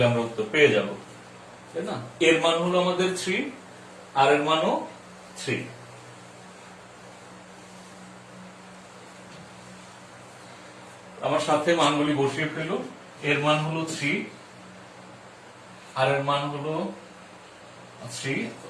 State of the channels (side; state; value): both; identical; correlation 1.00